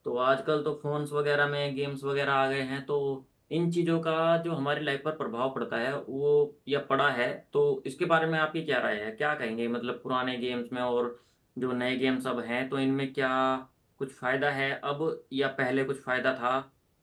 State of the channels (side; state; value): both; identical; correlation 1.00